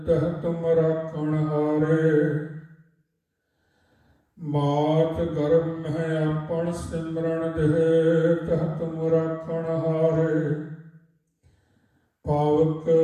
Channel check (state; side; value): identical; both; correlation 1.00